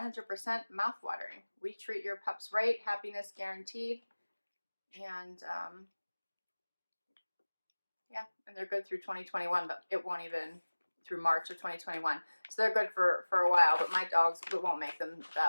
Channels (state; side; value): inverted; both; correlation -1.00